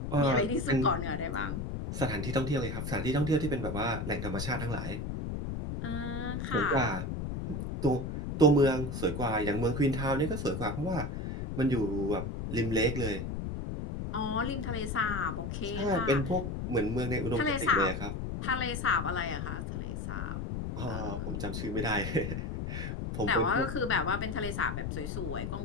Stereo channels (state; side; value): noise; left; rumble, 4 dB below the sound